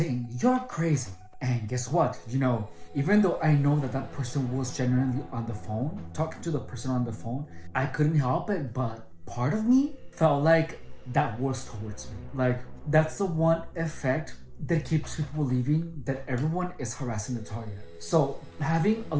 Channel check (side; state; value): both; identical; correlation 1.00